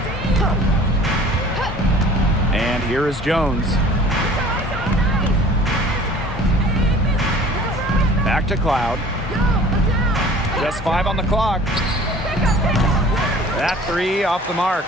And here is Jones. Back to Cloud. Just 5 on the clock. That 3 off the mark.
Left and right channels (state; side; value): normal; both; correlation 0.47